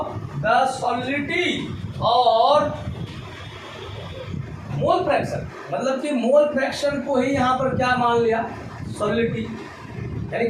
the solidity और मोल फ्रैक्शन, मतलब कि मोल फ्रैक्शन को ही यहाँ पर क्या मान लिया? सॉलिडिटी। यानी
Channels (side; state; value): both; identical; correlation 1.00